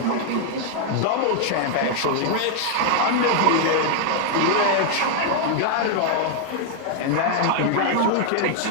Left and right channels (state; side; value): different; both; correlation 0.00